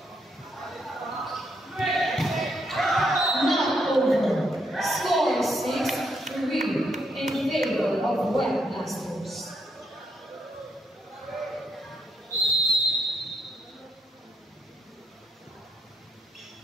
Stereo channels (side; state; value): both; normal; correlation 0.77